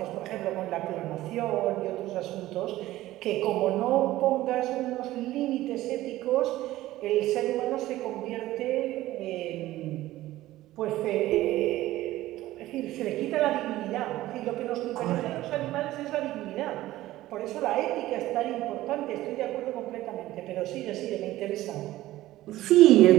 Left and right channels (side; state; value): left; quieter; 15.9 dB